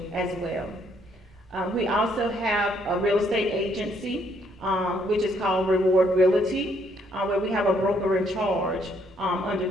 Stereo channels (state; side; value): normal; both; correlation 0.69